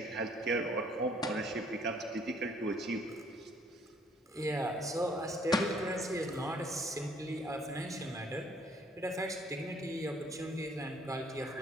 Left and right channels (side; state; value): both; normal; correlation 0.62